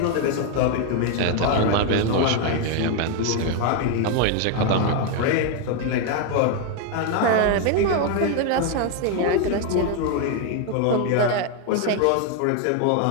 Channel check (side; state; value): both; different; correlation 0.01